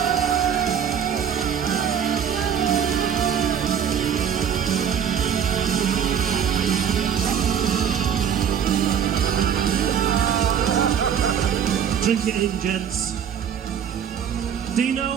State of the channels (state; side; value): quieter; left; 8.3 dB